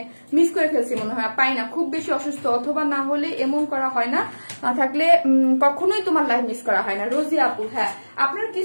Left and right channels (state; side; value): inverted; both; correlation -1.00